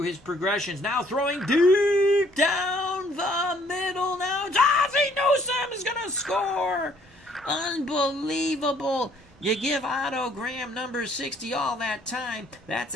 his progressions. Now throwing deep down the middle. Now Ozzie Newsome is going to score. Unbelievable. You give Otto Graham number 60 all that time. That's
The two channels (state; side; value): normal; both; correlation 0.62